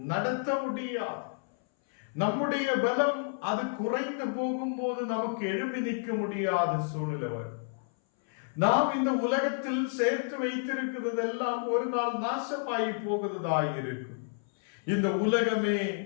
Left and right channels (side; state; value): right; silent; 58 dB below the other